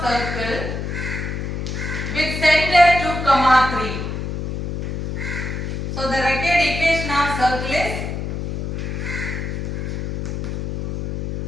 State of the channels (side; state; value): left; noise; hum, 4 dB below the sound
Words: circle with center 2, 3. So the required equation of circle is